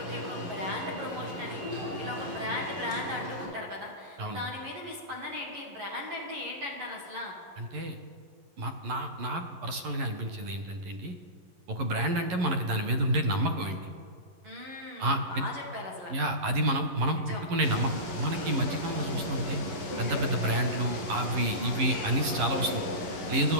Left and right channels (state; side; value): late; left; 11 ms